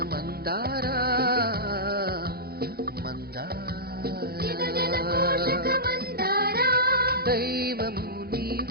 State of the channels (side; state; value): left; late; 0.45 ms